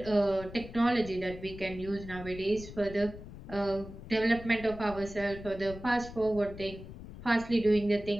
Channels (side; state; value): left; noise; rumble, 13 dB below the sound